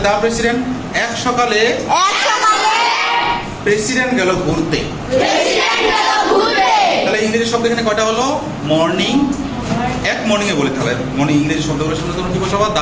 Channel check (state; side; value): identical; both; correlation 1.00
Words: দা প্রেসিডেন্ট। এক সকালে প্রেসিডেন্ট গেল ঘুরতে। তাহলে ইংরেজি শব্দ এখানে কয়টা হলো? মর্নিং। এক মর্নিং এ বলে, তাহলে মর্নিং ইংরেজি শব্দগুলো শুনে তোমরা কি বসাবা? দা